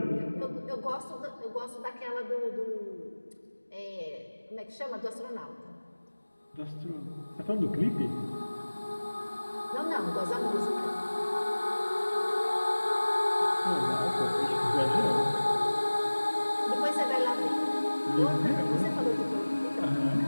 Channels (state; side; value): inverted; both; correlation -1.00